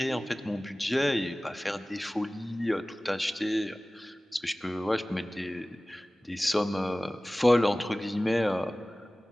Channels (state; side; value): normal; both; correlation 0.98